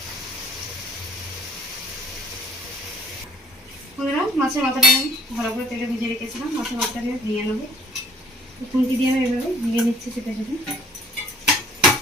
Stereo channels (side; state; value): both; normal; correlation 0.54